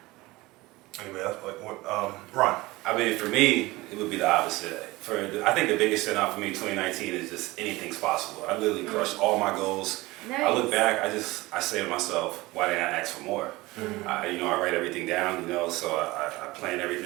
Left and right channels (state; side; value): quieter; left; 20.5 dB